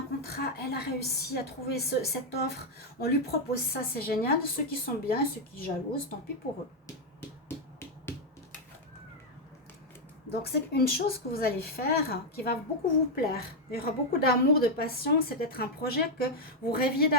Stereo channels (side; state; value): both; normal; correlation 0.01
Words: contrat, elle a réussi à trouver cette offre. On lui propose ça, c'est génial. Ceux qui sont bien et ceux qui jalousent, tant pis pour eux. Donc, c'est une chose que vous allez faire qui va beaucoup vous plaire. Il y aura beaucoup d'amour, de passion. C'est peut-être un projet que vous rêviez